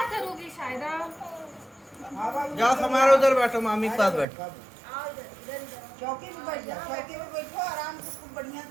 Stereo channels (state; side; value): drops out; left; at 4.2 s